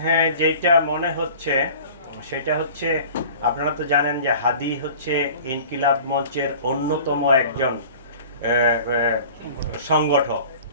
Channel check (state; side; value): inverted; both; correlation -0.43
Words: যেটা মনে হচ্ছে সেটা হচ্ছে, আপনারা তো জানেন যে হাদি হচ্ছে ইনকিলাব মঞ্চের অন্যতম একজন